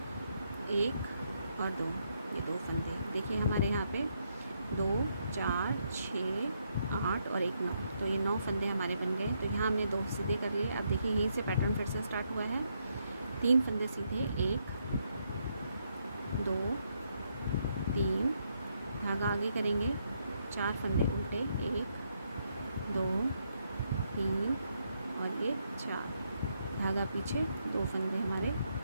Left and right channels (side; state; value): both; inverted; correlation -0.77